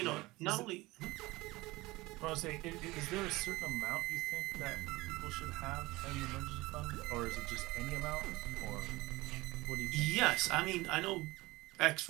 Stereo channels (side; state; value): left; quieter; 20.7 dB